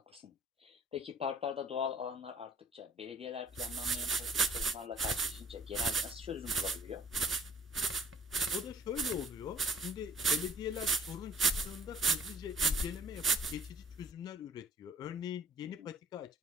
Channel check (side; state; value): both; normal; correlation 0.55